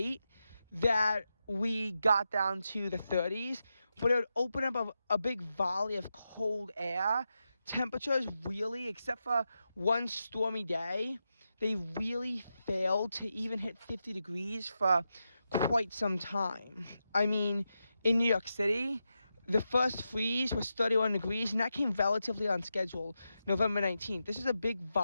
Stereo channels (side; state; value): both; inverted; correlation -0.88